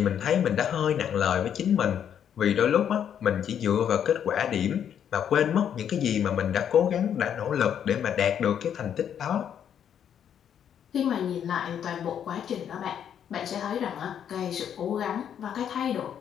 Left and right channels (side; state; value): right; quieter; 8.9 dB